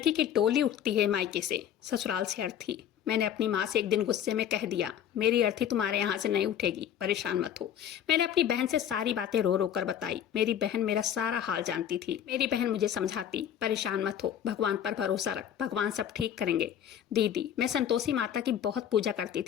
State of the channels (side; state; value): right; quieter; 9.7 dB